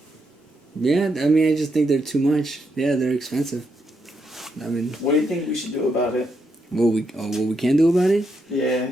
Yeah, I mean, I just think they're too much. Yeah, they're expensive. I mean, What do you think we should do about it? what we can do about it? Yeah.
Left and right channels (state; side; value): normal; both; correlation 0.80